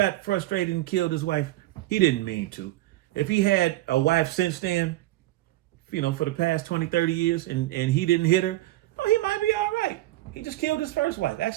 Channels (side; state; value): left; quieter; 16.6 dB